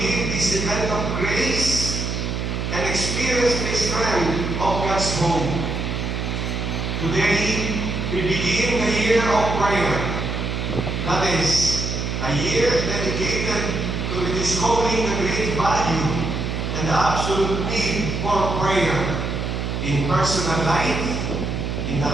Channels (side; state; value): right; noise; hum, 2 dB below the sound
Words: this event of grace and experience the strength of God's home. Today, we begin the year of prayer. That is, a year dedicated to rediscovering the great value and the absolute need for prayer in personal life, in the